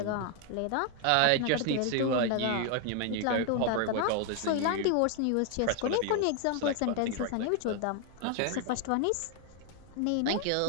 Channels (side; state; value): both; different; correlation 0.00